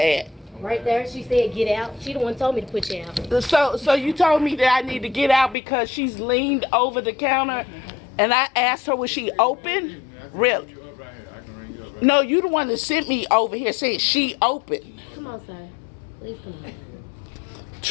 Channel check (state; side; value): drops out; right; at 5.6 s